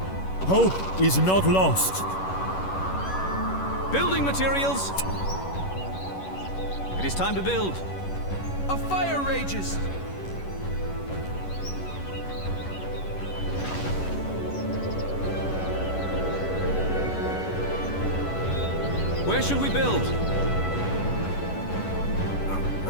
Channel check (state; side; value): late; right; 11 ms